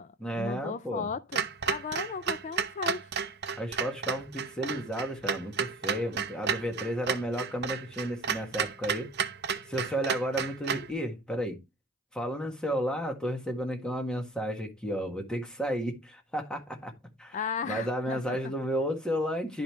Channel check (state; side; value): normal; both; correlation 0.44